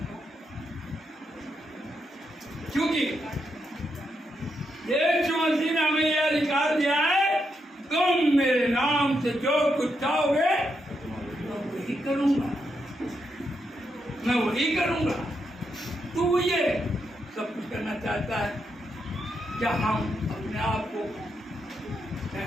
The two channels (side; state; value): both; normal; correlation 0.82